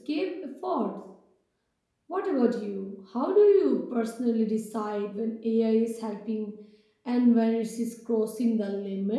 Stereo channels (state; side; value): identical; both; correlation 1.00